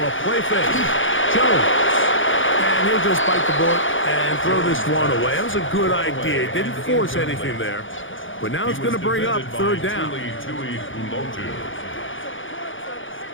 play fake. Jones. And he'll just bite the bullet and throw this one away. That was a good idea. Didn't force anything there. But now it's going to bring up 3rd down.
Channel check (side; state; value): right; late; 0.57 ms